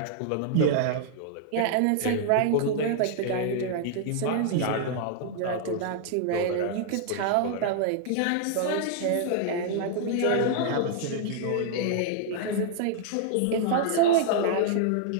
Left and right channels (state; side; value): different; both; correlation -0.01